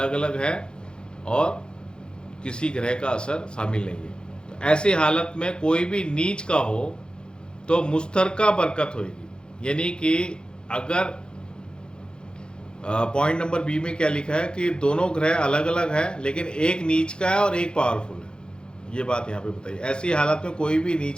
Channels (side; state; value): right; late; 0.049 ms